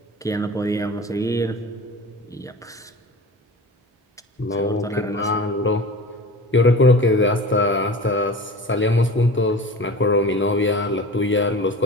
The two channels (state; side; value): normal; both; correlation 0.36